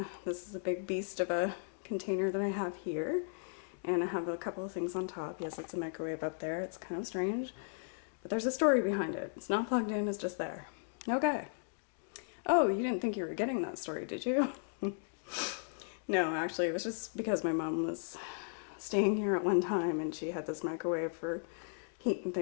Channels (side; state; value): right; silent; digital silence